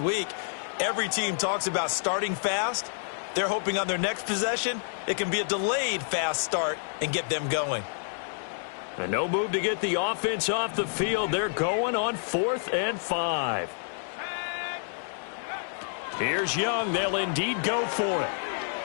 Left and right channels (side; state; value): right; silent; digital silence